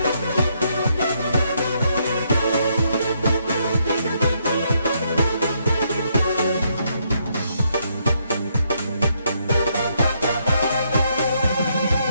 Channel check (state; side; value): inverted; both; correlation -0.74